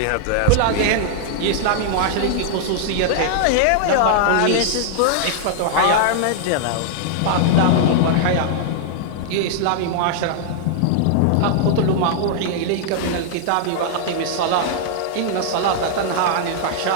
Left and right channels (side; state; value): both; different; correlation -0.01